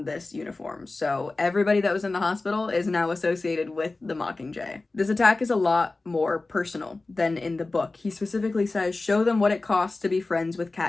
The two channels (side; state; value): right; quieter; 3.3 dB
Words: this uniform. So everybody that was in the hospital is now associated with the Mockingjay. This attack is a lot more personal than in the book. He specifically says, show them what it costs to be friends with